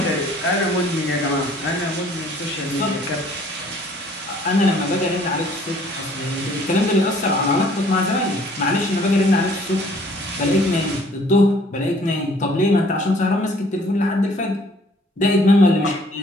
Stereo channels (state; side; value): normal; both; correlation 0.57